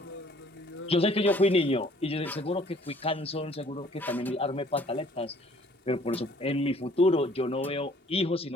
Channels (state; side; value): normal; both; correlation 0.57